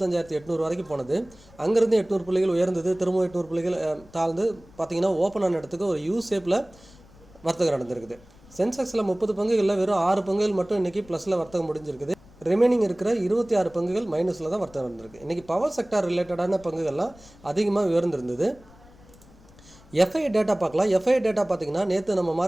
வரைக்கும் போனது. அங்கேருந்து 800 புள்ளிகள் உயர்ந்தது, திரும்பவும் 800 புள்ளிகள் தாழ்ந்து பார்த்தீங்கன்னா ஓப்பன் ஆன இடத்துக்கு ஒரு யூ ஷேப்பில் வர்த்தகம் நடந்திருக்குது. சென்செக்ஸில் 30 பங்குகளில் வெறும் 6 பங்குகள் மட்டும் இன்றைக்கி ப்ளஸில் வர்த்தகம் முடிஞ்சிருக்குது. ரிமைனிங் இருக்கிற 26 பங்குகள் மைனஸில் தான் வர்த்தகம் நடந்திருக்கு. இன்றைக்கி பவர் செக்டார் ரிலேட்டடான பங்குகள்லாம் அதிகமாக உயர்ந்திருந்தது. எஃப்ஐ டேட்டா பார்க்கலாம். எஃப்ஐ டேட்டா பார்த்தீங்கன்னா நேற்று நம்ம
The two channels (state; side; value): noise; left; rumble, 24 dB below the sound